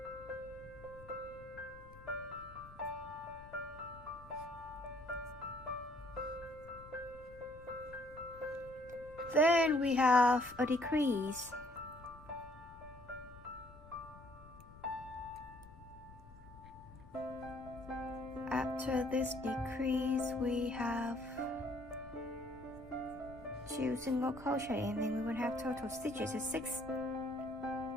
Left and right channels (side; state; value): left; noise; rumble, 19 dB below the sound